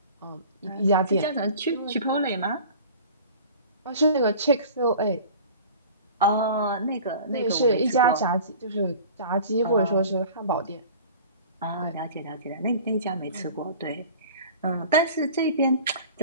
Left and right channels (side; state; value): both; inverted; correlation -0.42